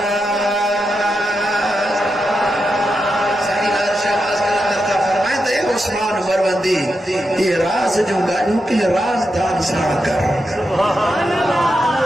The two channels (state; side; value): normal; both; correlation 0.87